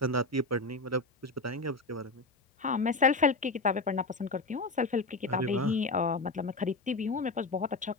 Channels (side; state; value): right; quieter; 3.3 dB